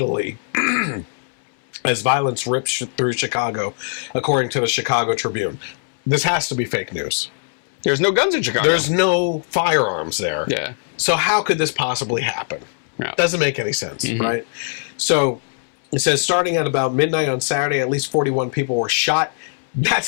as violence ripped through Chicago, according to the Chicago Tribune. This has to be fake news. There's no guns in Chicago. There's no firearms there. Yeah. So how could this possibly happen? Yeah. Doesn't make any sense, right? So it says starting at about midnight on Saturday, at least 41 people were shot.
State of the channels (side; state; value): right; silent; 64 dB below the other